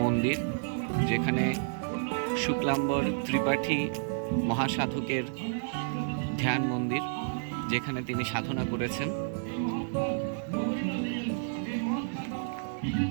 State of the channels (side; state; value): left; silent; digital silence